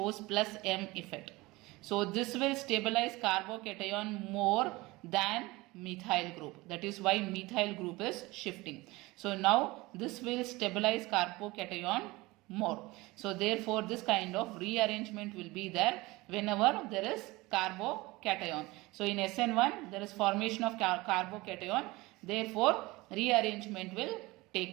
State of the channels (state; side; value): quieter; left; 21.4 dB